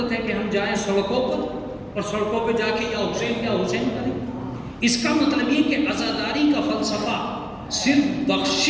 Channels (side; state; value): both; identical; correlation 1.00